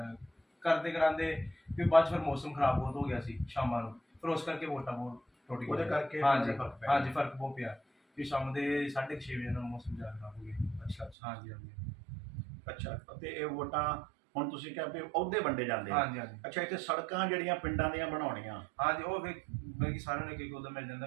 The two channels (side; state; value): left; drops out; at 11.2 s